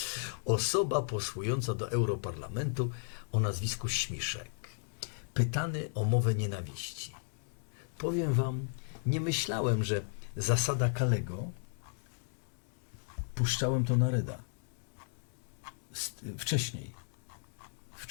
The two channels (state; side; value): silent; right; digital silence